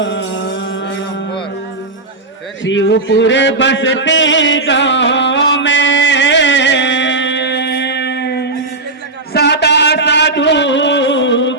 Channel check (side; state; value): left; quieter; 3.2 dB